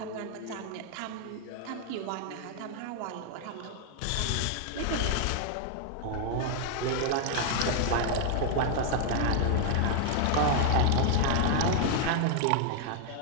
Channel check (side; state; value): both; different; correlation 0.00